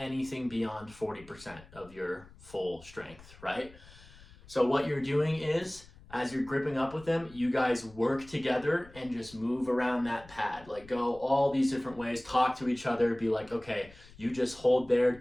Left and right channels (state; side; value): noise; left; rumble, 22 dB below the sound